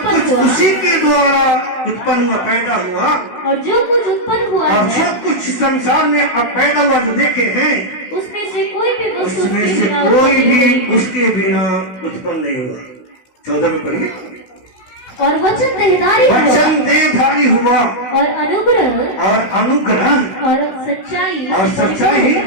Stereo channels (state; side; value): late; right; 16 ms